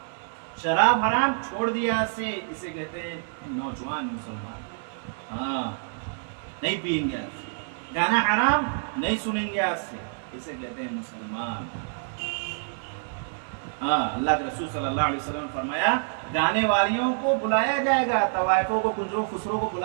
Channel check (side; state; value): left; silent; digital silence